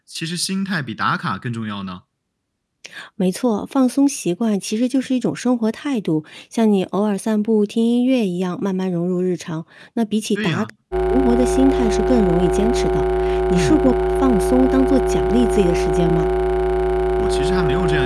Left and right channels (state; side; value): identical; both; correlation 1.00